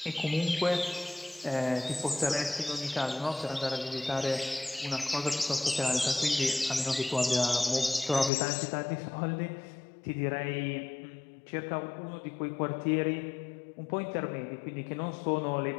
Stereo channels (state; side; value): drops out; right; at 8.3 s